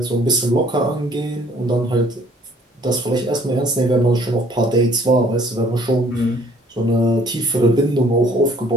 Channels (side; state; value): both; normal; correlation 0.58